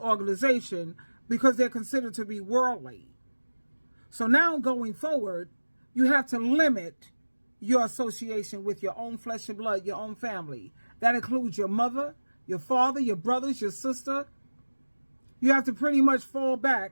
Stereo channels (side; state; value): both; inverted; correlation -1.00